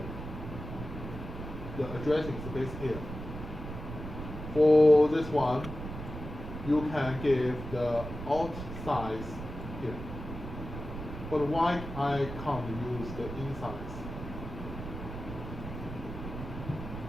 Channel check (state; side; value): noise; right; rumble, 9 dB below the sound